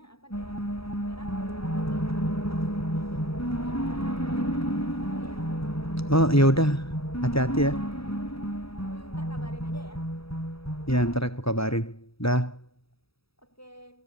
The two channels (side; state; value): right; late; 0.77 ms